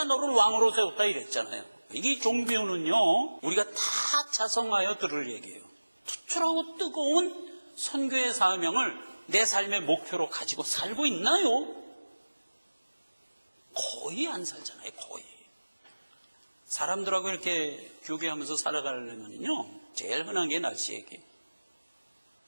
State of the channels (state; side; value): inverted; both; correlation -1.00